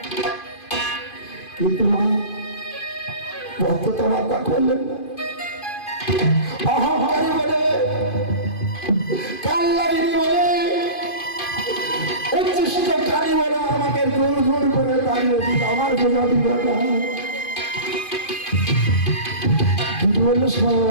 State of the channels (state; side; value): late; right; 2.5 ms